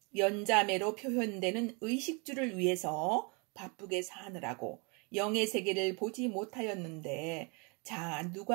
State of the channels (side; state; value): left; quieter; 32.1 dB